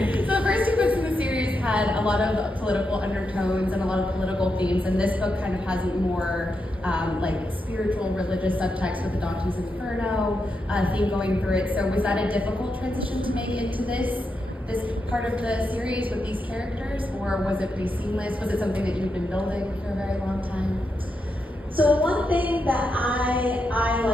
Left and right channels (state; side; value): normal; both; correlation 0.85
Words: So the first two books in the series had a lot of political undertones and a lot of political themes, and this book kind of has more like spiritual, religious subtext with the Dante's Inferno theme going through it. So was that a difficult transition to make into this part of the series with these characters, or was it pretty seamless? Was it something that you've been building for a very long time? So one thing that I